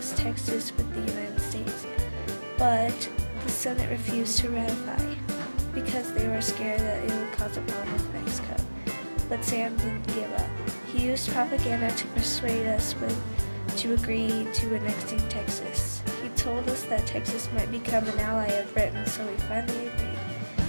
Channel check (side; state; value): both; inverted; correlation -1.00